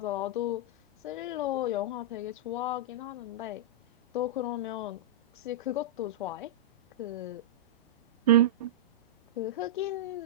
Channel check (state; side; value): normal; both; correlation -0.11